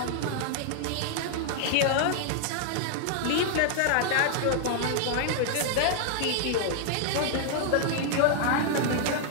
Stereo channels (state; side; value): different; both; correlation -0.01